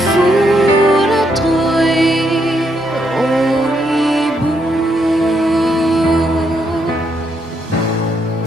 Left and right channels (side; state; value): both; normal; correlation 0.76